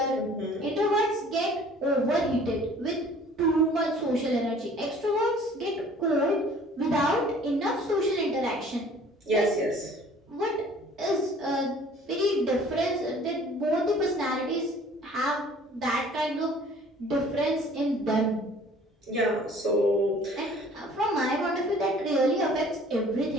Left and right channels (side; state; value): both; normal; correlation 0.52